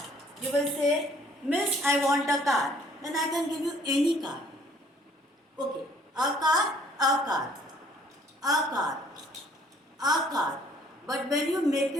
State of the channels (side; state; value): both; normal; correlation 0.60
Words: you will say, Miss, I want a car. Then I can give you any car. Okay, a car, a car, a car, a car. But when you make